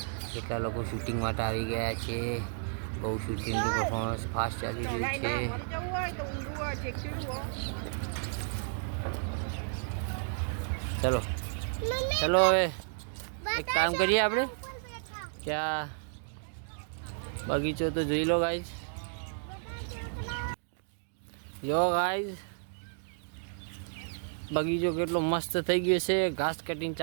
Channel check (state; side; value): silent; left; digital silence